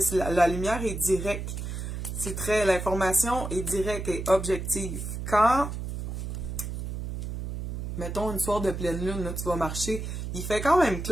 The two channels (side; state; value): right; noise; hum, 5 dB below the sound